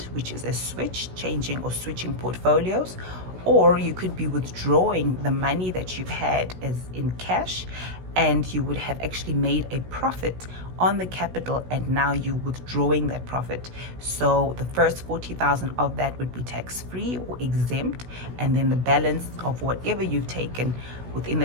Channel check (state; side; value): late; left; 16 ms